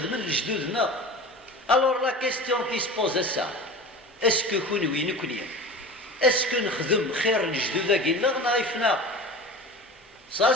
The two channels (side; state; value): both; normal; correlation 0.35